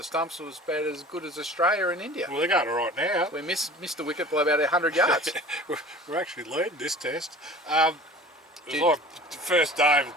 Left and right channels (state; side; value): normal; both; correlation 0.42